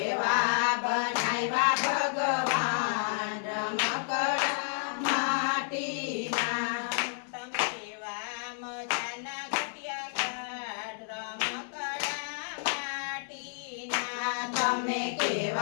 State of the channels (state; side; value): silent; right; 56 dB below the other